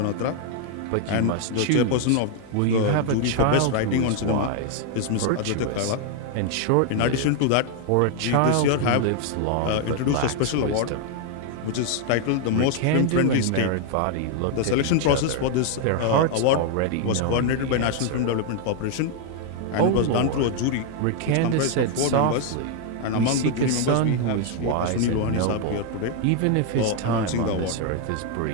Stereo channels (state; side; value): different; both; correlation 0.00